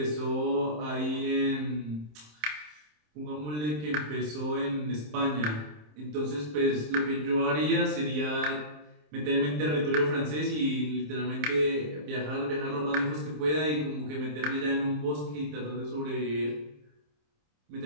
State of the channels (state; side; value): late; left; 27 ms